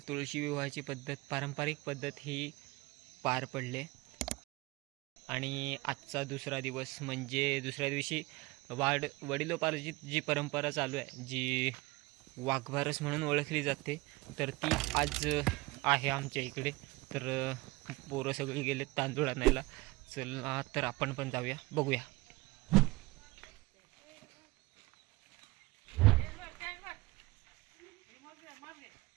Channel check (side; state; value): left; quieter; 22.5 dB